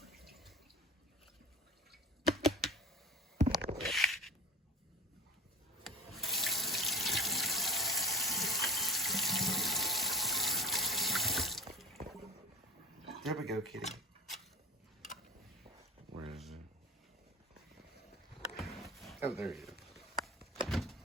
There we go, Kitty. Where is it? Oh, there you go.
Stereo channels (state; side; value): normal; both; correlation 0.37